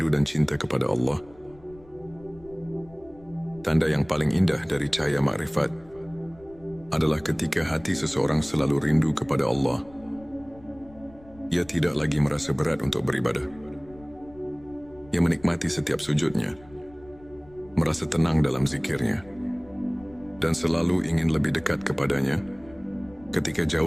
dan cinta kepada Allah. Tanda yang paling indah dari cahaya makrifat adalah ketika hati seseorang selalu rindu kepada Allah. Ia tidak lagi merasa berat untuk beribadah. Ia menikmati setiap sujudnya, merasa tenang dalam zikirnya, dan selalu ingin lebih dekat kepadanya. Ketika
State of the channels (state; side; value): noise; left; rumble, 24 dB below the sound